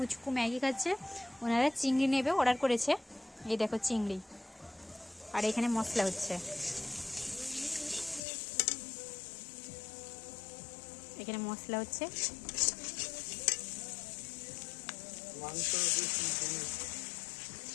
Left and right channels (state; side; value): drops out; right; at 8.2 s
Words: ম্যাগি খাচ্ছে। ওনারা চিংড়ি নেবে, অর্ডার করেছে। এই দেখো চিংড়ি, আর এখানে মশলা হচ্ছে। এখানে মশলা হচ্ছে,